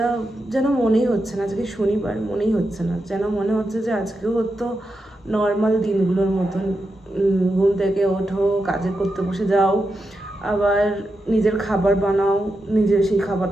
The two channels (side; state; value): both; normal; correlation 0.87